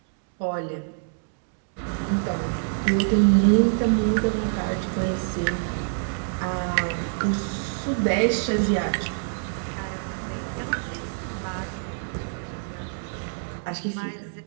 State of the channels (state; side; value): silent; left; digital silence